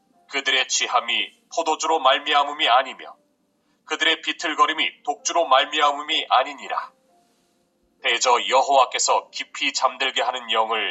그들의 취함이 포도주로 말미암음이 아니며 그들의 비틀거림이 독주로 말미암음이 아니니라. 대저 여호와께서 깊이 잠들게 하는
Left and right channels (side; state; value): both; identical; correlation 1.00